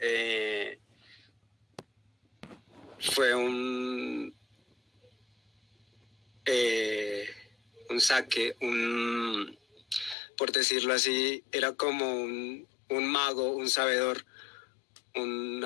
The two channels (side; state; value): right; drops out; at 10.2 s